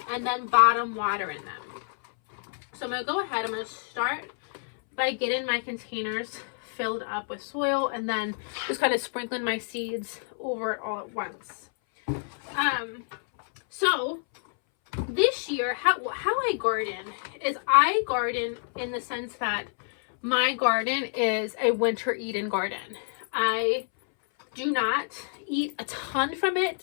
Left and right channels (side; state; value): right; silent; 59 dB below the other